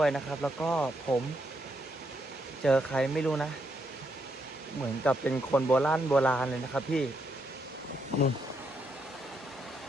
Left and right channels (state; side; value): normal; both; correlation 0.78